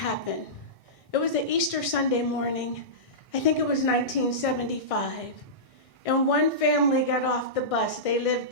It was an Easter Sunday morning. I think it was 1975. And one family got off the bus. They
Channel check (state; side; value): late; right; 1.6 ms